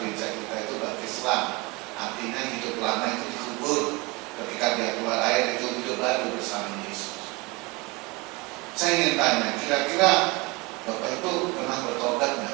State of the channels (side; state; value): left; quieter; 25.1 dB